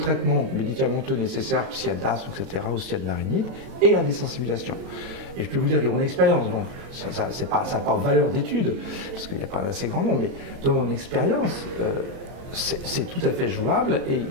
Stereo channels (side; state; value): left; late; 23 ms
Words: médicamenteux nécessaire s'il y a de l'asthme, etc., ou s'il y a de la rhinite, et la désensibilisation. Et je peux vous dire que mon expérience, donc ça n'a pas valeur d'étude, parce qu'il n'y a pas assez grand nombre, mais de mon expérience, c'est tout à fait jouable et il